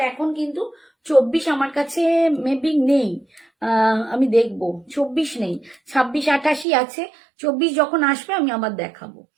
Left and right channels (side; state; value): left; drops out; at 6.7 s